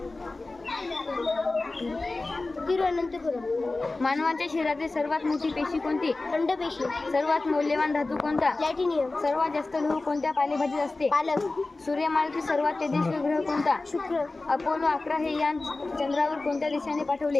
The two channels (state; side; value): quieter; right; 3.3 dB